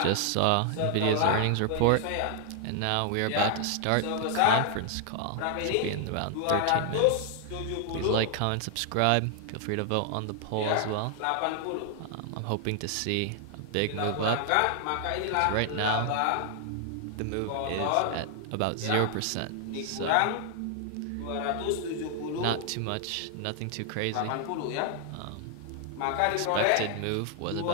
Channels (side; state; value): both; different; correlation 0.00